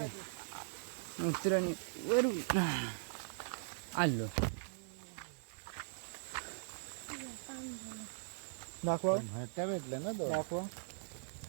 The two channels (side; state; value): left; silent; 51 dB below the other